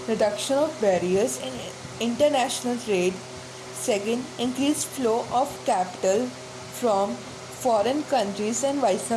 reduction of barriers in international trade. Second, increased flow of capital from foreign countries and vice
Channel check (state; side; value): identical; both; correlation 1.00